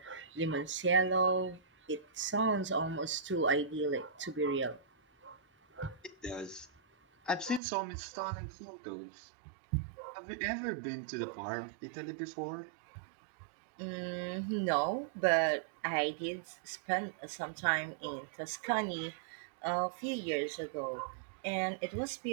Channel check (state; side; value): drops out; left; at 7.6 s